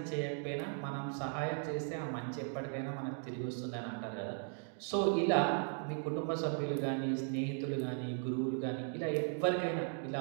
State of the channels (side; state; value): left; silent; 53 dB below the other